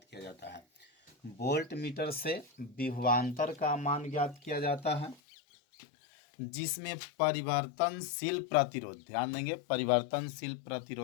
किया जाता है। वोल्ट मीटर से विभवांतर का मान ज्ञात किया जाता है, जिसमें परिवर्तनशील प्रतिरोध, ध्यान देंगे परिवर्तनशील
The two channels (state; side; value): drops out; right; at 5.2 s